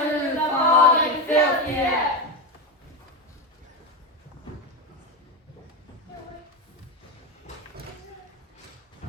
through the fog and filthy air.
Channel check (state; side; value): normal; both; correlation 0.15